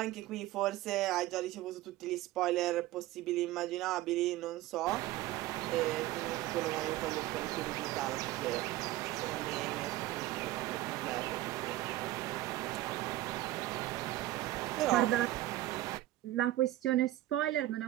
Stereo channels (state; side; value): quieter; left; 15.8 dB